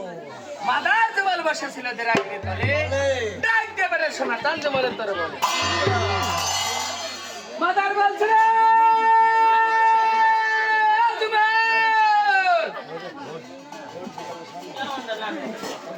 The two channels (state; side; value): identical; both; correlation 1.00